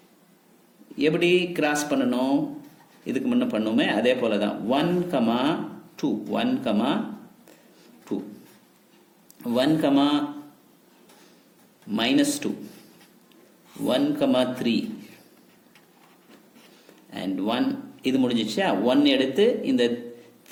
எப்படி கிராஸ் பண்ணணும்? இதுக்கு முன்ன பண்ணுமே அதே போல தான். 1, 2, 1, 2, 1, -2, 1, 3 and 1. இது முடிஞ்சிச்சா? 1 எடுத்து இந்த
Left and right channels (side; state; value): both; identical; correlation 1.00